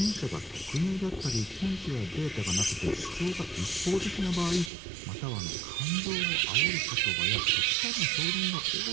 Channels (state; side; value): drops out; left; at 4.7 s